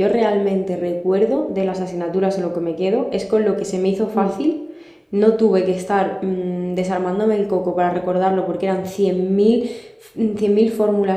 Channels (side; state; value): both; identical; correlation 1.00